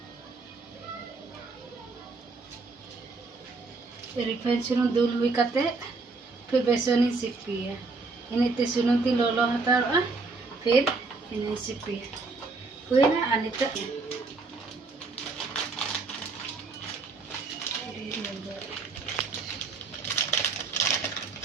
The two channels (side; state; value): left; quieter; 4.0 dB